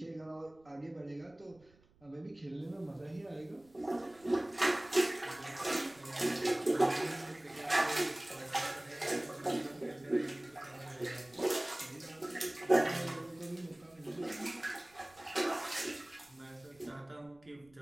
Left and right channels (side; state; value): right; noise; rumble, 29 dB below the sound